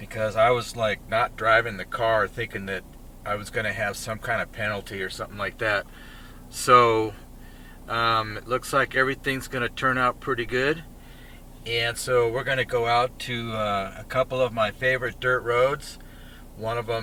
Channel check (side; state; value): both; identical; correlation 1.00